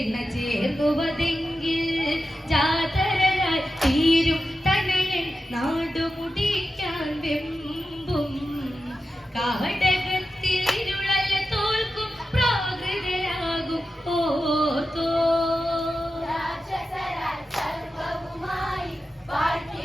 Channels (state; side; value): normal; both; correlation 0.91